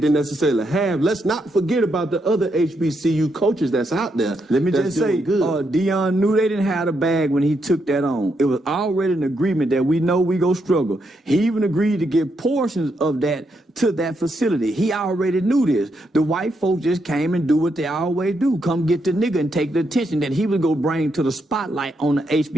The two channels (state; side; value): normal; both; correlation 0.80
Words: necessarily have, let's not forget about the other HBCU coaches that's out there. Let me just say, Deion knew they didn't have a bag when he took that on. It was already an agreement that we know we go struggle. He even agreed to give portions of that to that facility. He already knew this. The white folks just came and do what they always do. Come get the nigga and take the attention that he was going to bring to the spotlight on the